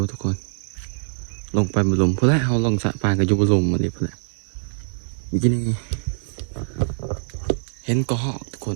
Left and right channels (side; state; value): left; silent; digital silence